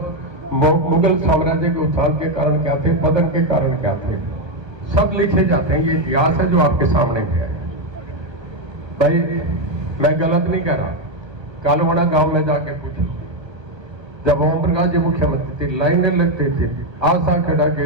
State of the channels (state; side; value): late; left; 1.3 ms